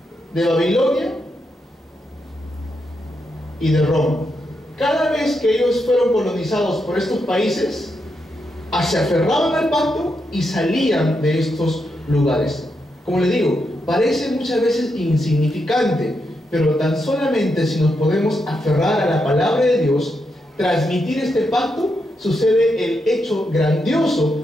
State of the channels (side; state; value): both; normal; correlation 0.83